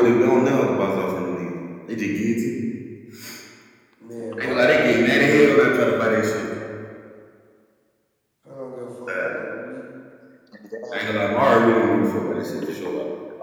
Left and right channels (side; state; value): both; identical; correlation 1.00